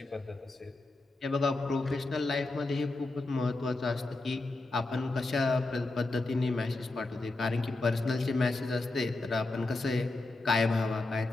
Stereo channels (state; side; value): quieter; right; 3.1 dB